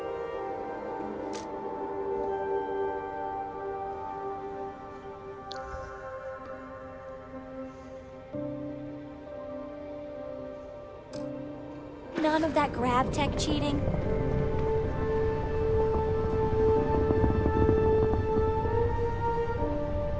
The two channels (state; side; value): identical; both; correlation 1.00